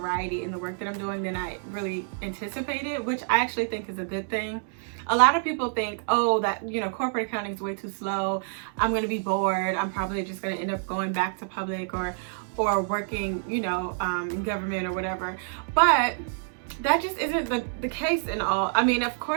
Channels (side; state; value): left; silent; digital silence